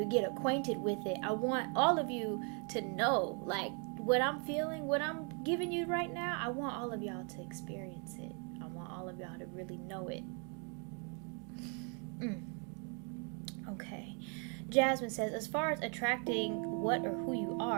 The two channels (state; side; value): quieter; left; 38.3 dB